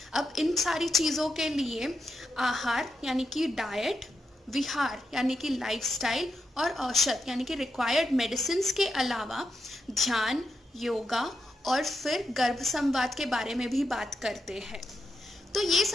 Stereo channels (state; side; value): normal; both; correlation 0.85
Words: अब इन सारी चीज़ों के लिए आहार यानी कि डाइट, विहार यानी कि लाइफस्टाइल और औषध यानी कि रिक्वायर्ड मेडिसिन के अलावा ध्यान, योगा और फिर गर्भ संवाद के बारे में भी बात करते हैं। तो ये